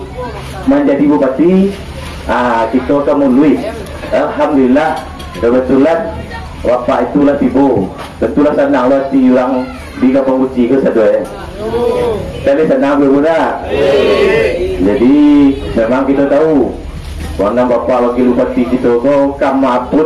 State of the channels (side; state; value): both; identical; correlation 1.00